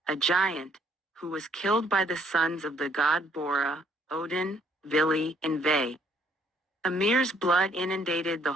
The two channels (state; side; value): normal; both; correlation 0.66